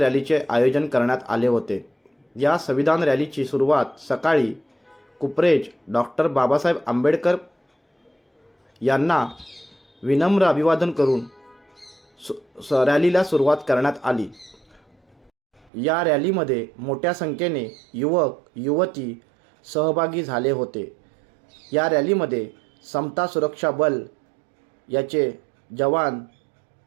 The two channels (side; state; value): left; drops out; at 15.7 s